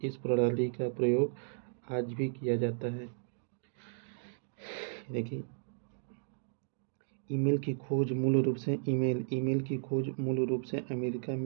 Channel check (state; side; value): silent; left; digital silence